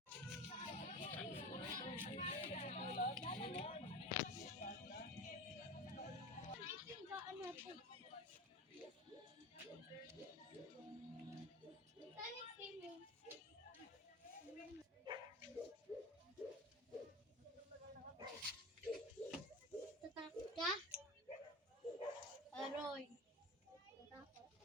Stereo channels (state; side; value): normal; both; correlation 0.30